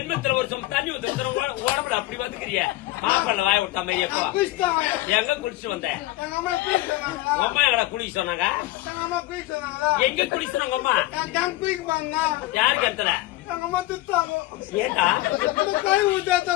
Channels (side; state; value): right; quieter; 17.6 dB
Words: ஒரு சம் தண்ணி ஊத்த உடம்புல அப்படி வந்துக்கிறிய மாப்பிள்ள வாய விட்டா மாதிரி எங்க குளிச்சு வந்த அம்மா எங்களை குளிக்க சொன்னாங்க எங்க குளிச்சு சொன்னாங்க அம்மா யாருக்கு எடுத்துற ஏண்டா